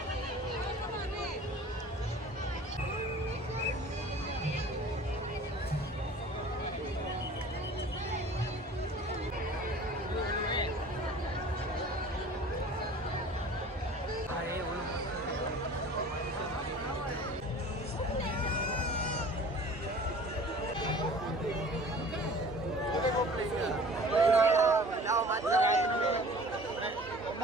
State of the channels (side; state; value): both; normal; correlation 0.45